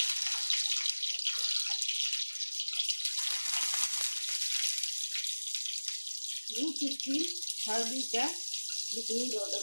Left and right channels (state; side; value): inverted; both; correlation -1.00